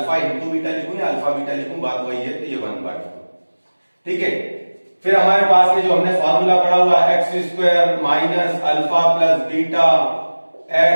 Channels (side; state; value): both; inverted; correlation -1.00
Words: इंटू बीटा लिखूं या अल्फा बीटा लिखूं, बात वही है, तो ये 1/4, ठीक है। फिर हमारे पास में जो हमने फार्मूला पढ़ा हुआ है x² minus alpha plus beta